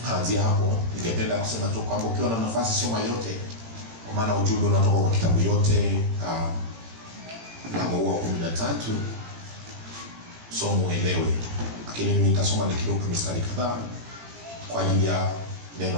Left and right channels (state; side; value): late; left; 18 ms